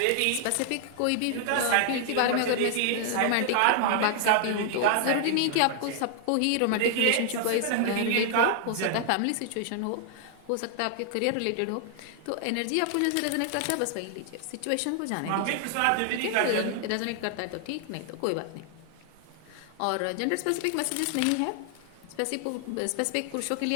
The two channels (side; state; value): both; different; correlation 0.00